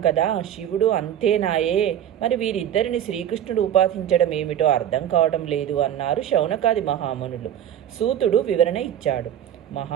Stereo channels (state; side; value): quieter; left; 10.5 dB